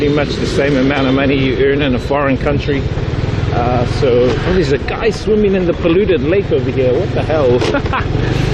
much the same amount of money you earn in a foreign country. Oh, there's a guy swimming in the polluted lake over here. What the hell?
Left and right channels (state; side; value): identical; both; correlation 1.00